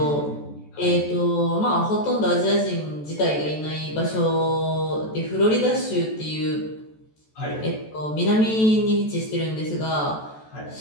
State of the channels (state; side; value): late; right; 14 ms